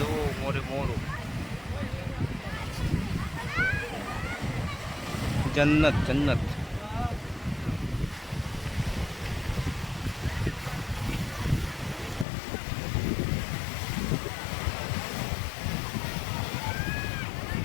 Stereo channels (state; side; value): drops out; right; at 12.2 s